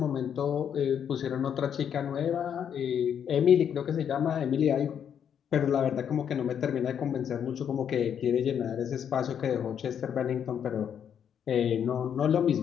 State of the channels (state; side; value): quieter; right; 8.5 dB